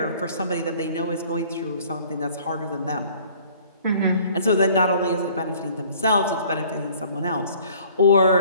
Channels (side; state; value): both; inverted; correlation -0.53